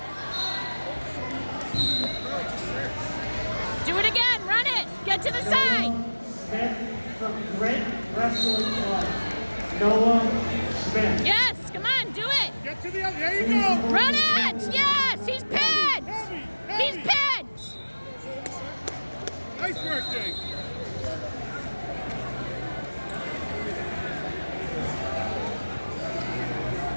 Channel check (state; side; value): inverted; both; correlation -1.00